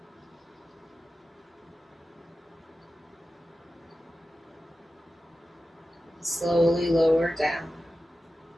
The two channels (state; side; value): normal; both; correlation 0.94